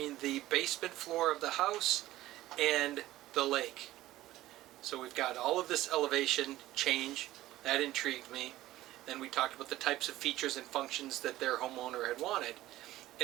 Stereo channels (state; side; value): quieter; left; 15.7 dB